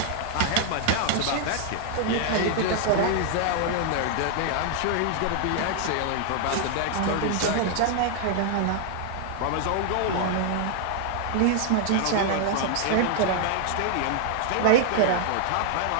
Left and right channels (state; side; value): different; both; correlation 0.00